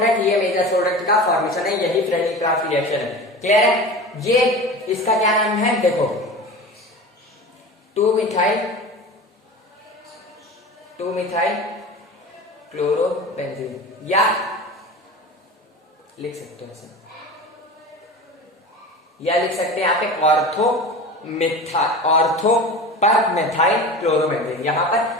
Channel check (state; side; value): normal; both; correlation 0.32